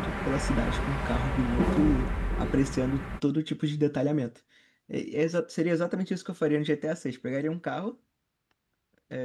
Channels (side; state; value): both; identical; correlation 1.00